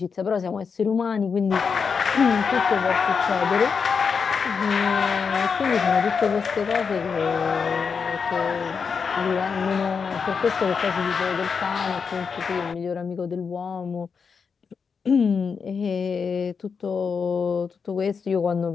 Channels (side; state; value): right; quieter; 5.8 dB